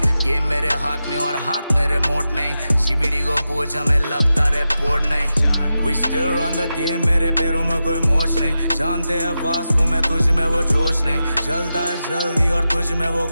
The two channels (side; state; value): both; inverted; correlation -0.91